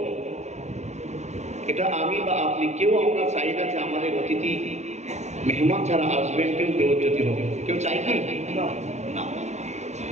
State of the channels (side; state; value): left; late; 0.33 ms